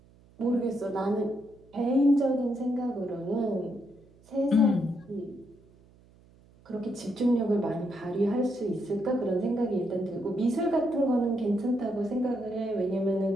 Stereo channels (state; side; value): noise; right; hum, 28 dB below the sound